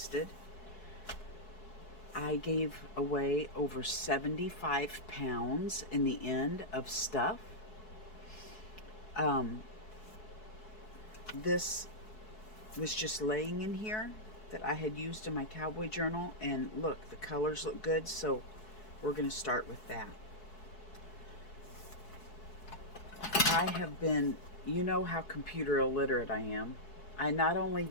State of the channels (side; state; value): right; late; 4.7 ms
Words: I gave away over 75 pounds in the end of stuff. This was just laying in here that I had used in my cowboy journal, and look, the colors look good, so we're going to start with that. I have been, you know how computer illiterate I am. I not only